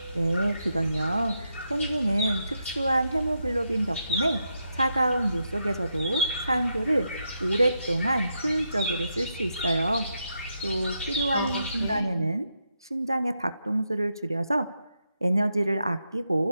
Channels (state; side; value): inverted; both; correlation -0.82